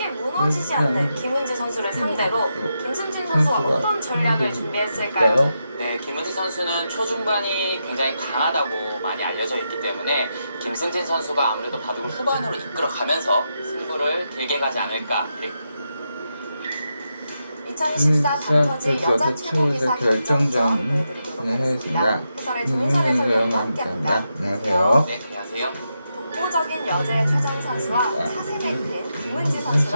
무너지지 않는 김은지 선수를 상대로 김승진 선수가 어떤 전략을 준비했을까요? 네, 김은지 선수는 초중반이 굉장히 강하다고 많이 알려져 있기 때문에 김승진 선수가 아무래도 바둑을 후반으로 이끌어가면서 승부를 길게 가지 않을까. 2024 닥터즈 여자 최고기사 결정전 보여드리도록 하겠습니다. 해설의 조인선 해설위원과 함께합니다. 안녕하세요. 네, 안녕하세요. 독보적인 여자의 최정 선수와 차세대인 김은지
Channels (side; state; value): both; inverted; correlation -0.85